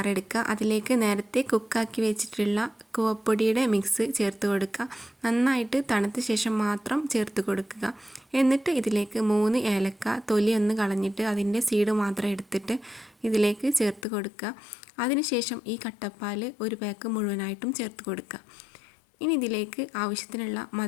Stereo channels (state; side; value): drops out; right; at 14.1 s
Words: എടുക്കുക. അതിലേക്ക് നേരത്തെ കുക്കാക്കി വെച്ചിട്ടുള്ള കൂവപ്പൊടിയുടെ മിക്സ് ചേർത്ത് കൊടുക്കുക. നന്നായിട്ട് തണുത്ത ശേഷം മാത്രം ചേർത്ത് കൊടുക്കുക. എന്നിട്ട് ഇതിലേക്ക് 3 ഏലക്ക തൊലി ഒന്ന് കളഞ്ഞിട്ട് അതിൻ്റെ സീഡ് മാത്രം എടുത്തിട്ട് ഇതിലേക്ക് ചേർത്ത് കൊടുക്കുക. അതിനുശേഷം ഈ കട്ടപ്പാൽ ഒരു പാക്ക് മുഴുവനായിട്ടും ചേർത്ത് കൊടുക്കുക. ഇനി ഇതിലേക്ക് ആവശ്യത്തിനുള്ള